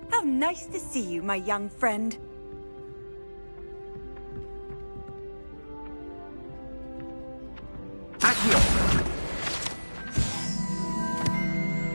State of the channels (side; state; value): both; inverted; correlation -1.00